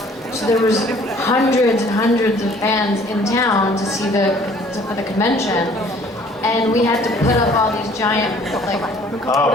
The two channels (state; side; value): normal; both; correlation 0.55